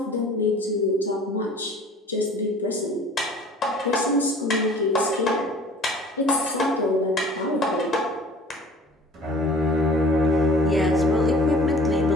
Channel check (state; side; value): normal; both; correlation 0.49